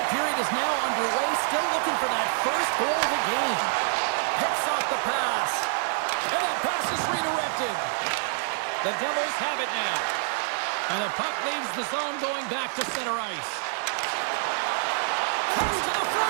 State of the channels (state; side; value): silent; left; digital silence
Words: period is now underway. Still looking for that first goal of the game. Picks off the pass. And that pass is redirected. The Devils have it now. And the puck leaves the zone going back to center ice. Comes to the